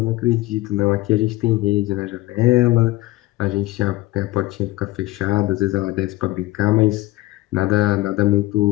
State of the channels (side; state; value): right; quieter; 18.0 dB